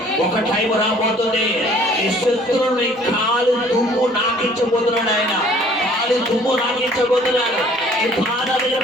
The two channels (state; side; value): normal; both; correlation 0.55